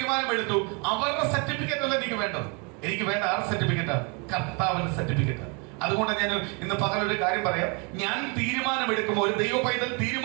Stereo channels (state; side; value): quieter; left; 32.9 dB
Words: അവരുടെ സർട്ടിഫിക്കറ്റ് അല്ല എനിക്ക് വേണ്ടത്. എനിക്ക് വേണ്ട ആറ് സർട്ടിഫിക്കറ്റാ? കർത്താവിന്റെ സർട്ടിഫിക്കറ്റ്. അതുകൊണ്ട് ഞാൻ ഇന്ന് പകലൊരു കാര്യം പറയാം. ഞാൻ തീരുമാനമെടുക്കുമ്പോൾ, ഒരു ദൈവ പൈതൽ